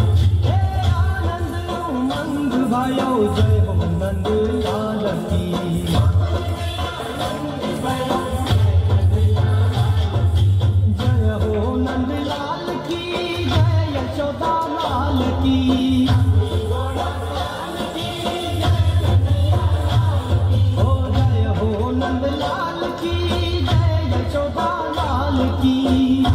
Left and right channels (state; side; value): identical; both; correlation 1.00